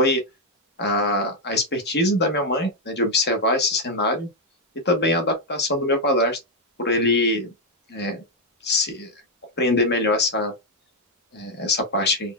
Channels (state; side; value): normal; both; correlation 0.00